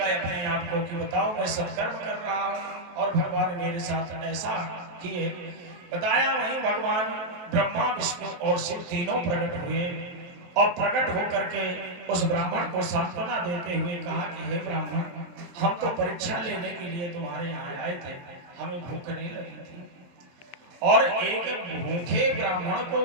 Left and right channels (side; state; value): left; late; 22 ms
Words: अपने आप को कि बताओ मैं सत्कर्म कर रहा हूं और भगवान मेरे साथ ऐसा किए। बताया वहीं भगवान ब्रह्मा विष्णु और शिव तीनों प्रकट हुए और प्रकट होकर के उस ब्राह्मण को सांत्वना देते हुए कहा कि हे ब्राह्मण, हम तो परीक्षा लेने के लिए तुम्हारे यहाँ आए थे, हमें भूख नहीं लगी थी और एक भूखे ब्राह्मण को